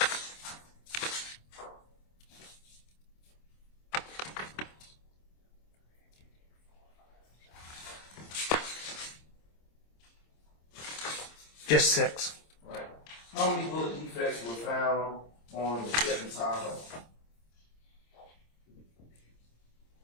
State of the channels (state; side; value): late; right; 26 ms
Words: Just 6. Right. How many bullet defects were found on the Chevy Tahoe?